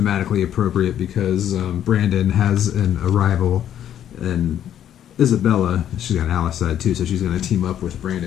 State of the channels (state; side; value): quieter; right; 10.4 dB